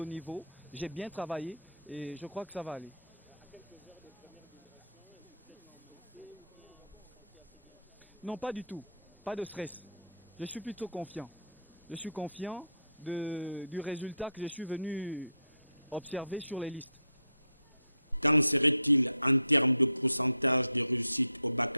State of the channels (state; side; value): inverted; both; correlation -0.71